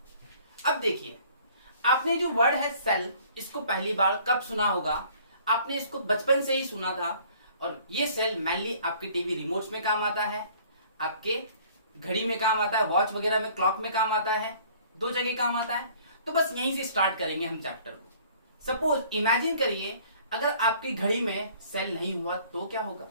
अब देखिए, आपने जो वर्ड है सेल, इसको पहली बार कब सुना होगा? आपने इसको बचपन से ही सुना था। और ये सेल मेनली आपके टीवी रिमोट्स में काम आता है, आपके घड़ी में काम आता है, वॉच वगैरह में, क्लॉक में काम आता है, दो जगह काम आता है। तो बस यहीं से स्टार्ट करेंगे हम चैप्टर को। सपोज इमेजिन करिए, अगर आपकी घड़ी में सेल नहीं हुआ तो क्या होगा?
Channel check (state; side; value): inverted; both; correlation -0.55